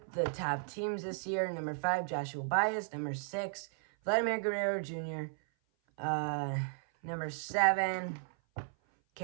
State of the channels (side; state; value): left; silent; 55 dB below the other